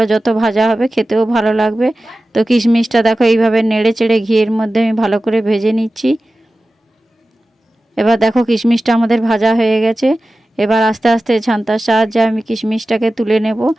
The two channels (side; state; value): both; normal; correlation 0.95